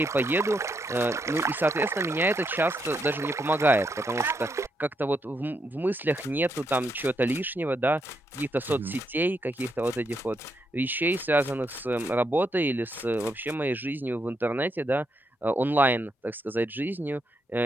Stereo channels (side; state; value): both; normal; correlation 0.79